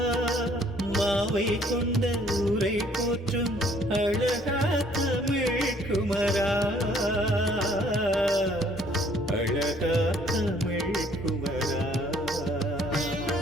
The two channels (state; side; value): normal; both; correlation 0.61